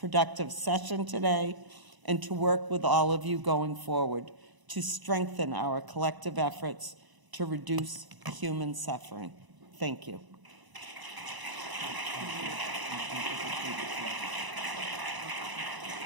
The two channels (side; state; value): left; late; 1.0 ms